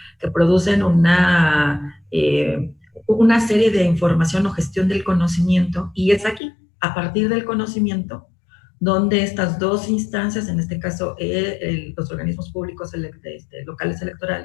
que producen una serie de información o gestión del conocimiento, y es aquí, a partir del conocimiento, donde estas dos instancias, en este caso los organismos públicos locales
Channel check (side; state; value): right; drops out; at 6.4 s